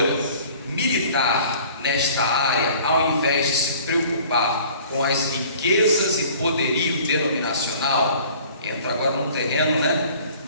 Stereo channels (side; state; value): both; inverted; correlation -0.50